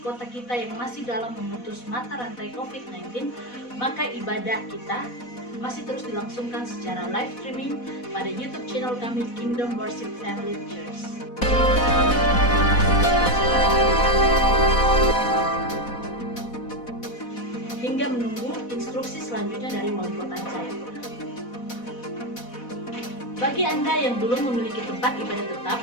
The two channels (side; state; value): right; late; 4.1 ms